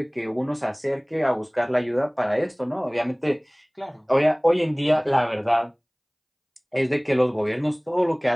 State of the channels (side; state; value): both; identical; correlation 1.00